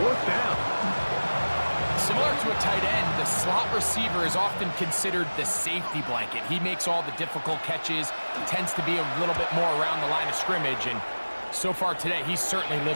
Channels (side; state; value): both; inverted; correlation -1.00